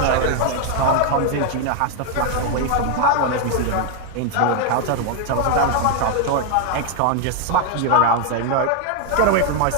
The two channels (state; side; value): different; both; correlation 0.00